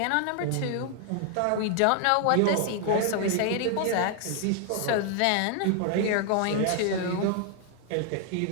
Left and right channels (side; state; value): both; different; correlation 0.00